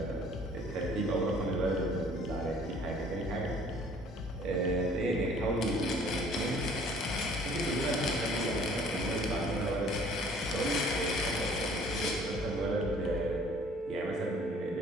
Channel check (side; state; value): both; normal; correlation 0.55